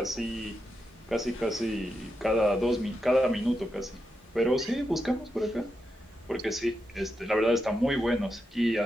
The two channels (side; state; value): both; normal; correlation 0.86